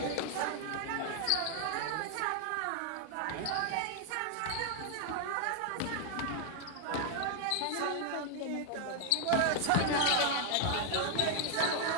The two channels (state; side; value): different; both; correlation 0.00